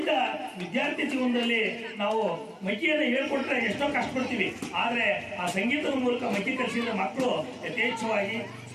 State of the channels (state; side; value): identical; both; correlation 1.00